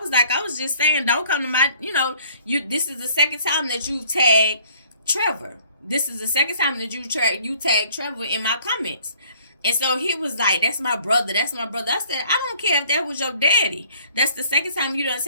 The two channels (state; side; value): inverted; both; correlation -0.58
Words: was just saying, don't come to my, this is the second time that you've tagged Trevor. This is the second time that you tagged Trevor in my comments. And so he was like, that's my brother. That's my brother. I said, I don't care if that was your daddy. That's the second time you done